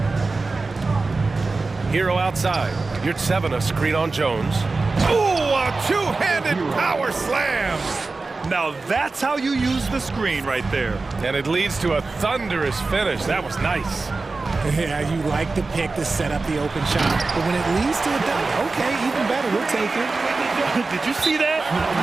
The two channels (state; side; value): quieter; left; 3.8 dB